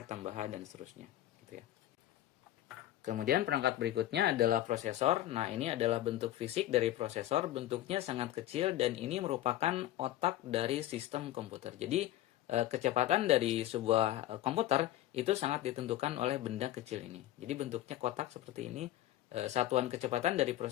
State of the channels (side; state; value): right; quieter; 13.9 dB